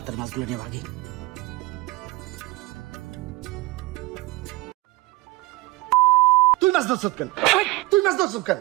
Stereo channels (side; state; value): left; quieter; 19.3 dB